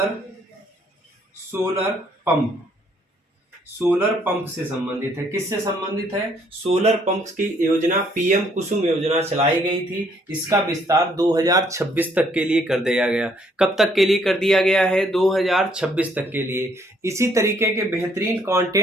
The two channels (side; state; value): both; normal; correlation 0.66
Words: सोलर पंप से संबंधित है, किससे संबंधित है, सोलर पंप की योजना पीएम कुसुम योजना चलाई गई थी, इसका विस्तार 2026 तक के लिए कर दिया गया। कब तक के लिए कर दिया गया है, 2026 तक के लिए। इसी तरीके के बेहतरीन